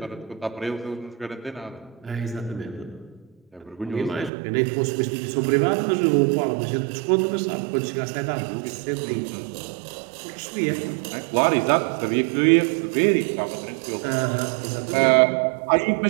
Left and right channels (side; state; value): left; drops out; at 4.3 s